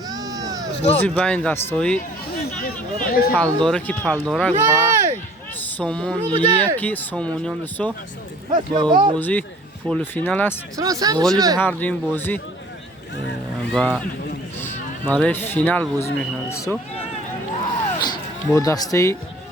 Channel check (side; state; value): both; normal; correlation 0.51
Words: بازی بین دستایی پلداره که پلدارک و سومون یکی سومونیان دوستو با بازی پول فینال است غالب هر دو این بازی و برای فینال بازی میکنند دوستو با دسته